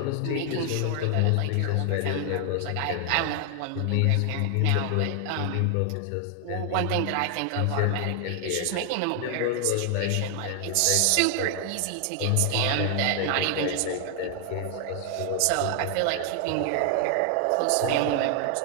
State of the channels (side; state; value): both; different; correlation 0.00